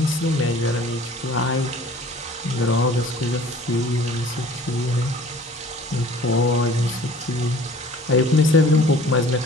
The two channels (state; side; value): normal; both; correlation 0.49